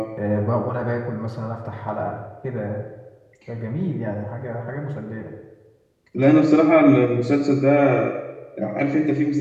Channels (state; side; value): identical; both; correlation 1.00